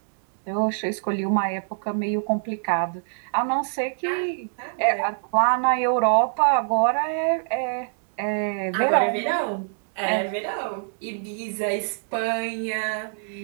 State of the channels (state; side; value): silent; left; digital silence